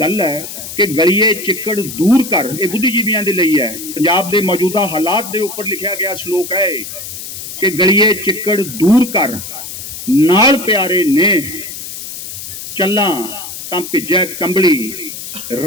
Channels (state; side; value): noise; left; hiss, 10 dB below the sound